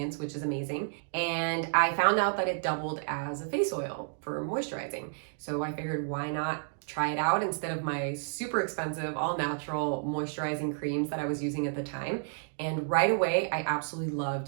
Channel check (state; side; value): silent; left; digital silence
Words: which is amazing. And I found out that it doubled as a face oil for moisturizing. So I figured, why not try it out instead of my super expensive all natural moisturizing creams that I was using at the time. And right away, I absolutely